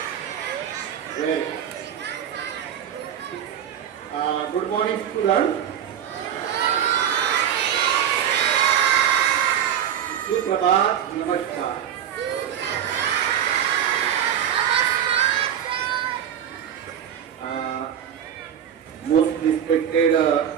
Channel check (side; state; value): left; quieter; 9.5 dB